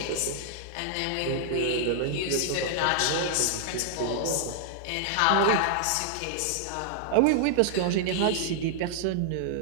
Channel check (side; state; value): both; different; correlation -0.01